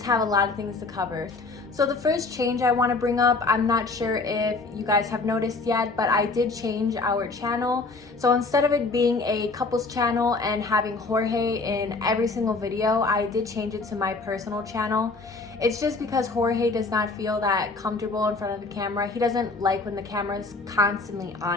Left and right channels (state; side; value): quieter; right; 3.7 dB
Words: have a lot of things to cover. So the first change I want to bring up, I'm not sure if you guys have noticed yet, but I did change our channel. So instead of it being a couples channel and having Jorge in every single video, I did change it to my personal channel. It's just because Jorge does not feel that comfortable in front of the camera. He doesn't like when the camera is constantly